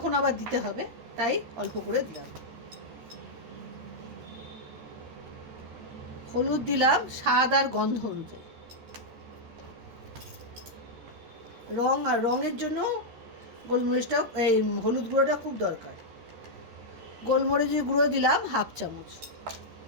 আবার দিতে হবে, তাই অল্প করে দিলাম। হলুদ দিলাম স্বাদ আর গন্ধ অনুযায়ী। রঙের জন্য গোলমরিচটা এই হলুদ গুঁড়োটা খুব দরকার। গোলমরিচের গুঁড়ো দিলাম 1/2 চামচ।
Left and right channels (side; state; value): left; late; 13 ms